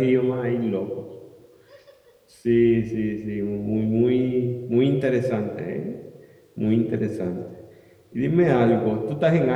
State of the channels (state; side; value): identical; both; correlation 1.00